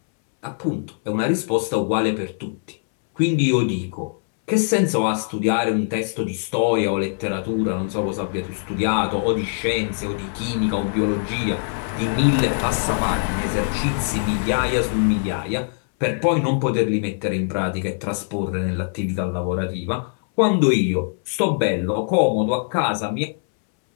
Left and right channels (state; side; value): silent; right; 64 dB below the other